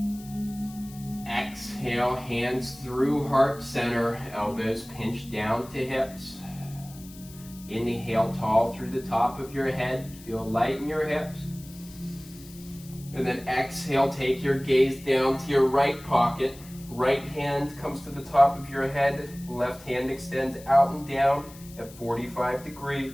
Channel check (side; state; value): left; noise; hiss, 20 dB below the sound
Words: Exhale, hands through heart center, elbows pinch down to hips. Inhale, tall through the top of your head, feel light in your hips. And then exhale, take your gaze down to your right pocket. Right hand comes to the top of your head, left hand extends out and down at 45